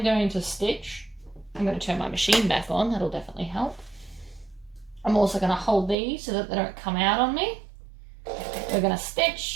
going to stitch. I'm going to turn my machine back on. That'll definitely help. I'm also going to hold these so that they don't come out on me. We're going to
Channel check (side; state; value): left; drops out; at 6.0 s